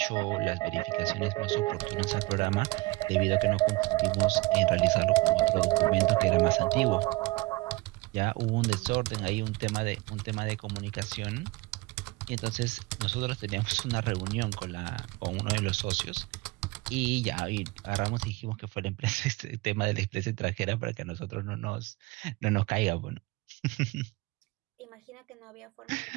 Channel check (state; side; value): quieter; left; 21.5 dB